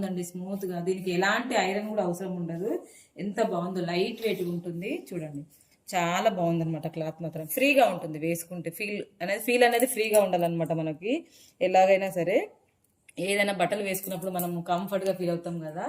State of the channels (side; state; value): both; identical; correlation 1.00